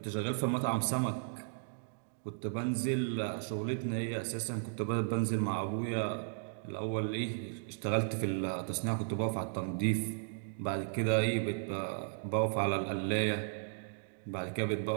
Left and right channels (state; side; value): silent; left; digital silence